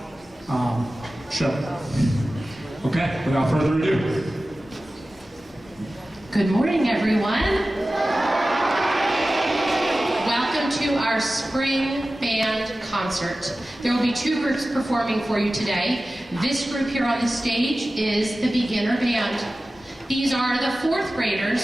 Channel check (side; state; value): both; normal; correlation 0.96